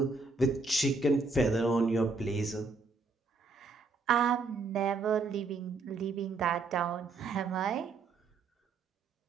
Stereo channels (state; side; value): quieter; left; 4.0 dB